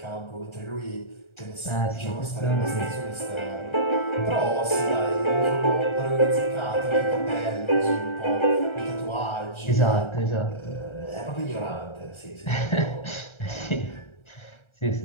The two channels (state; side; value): late; right; 1.3 ms